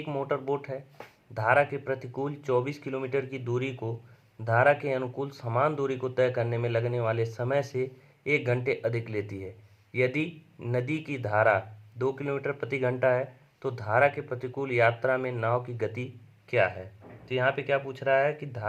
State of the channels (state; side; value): identical; both; correlation 1.00